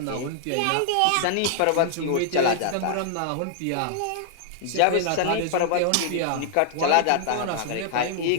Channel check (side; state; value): both; different; correlation -0.01